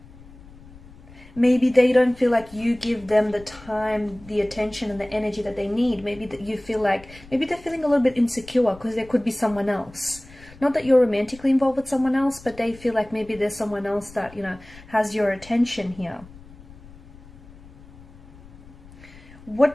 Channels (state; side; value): noise; left; rumble, 21 dB below the sound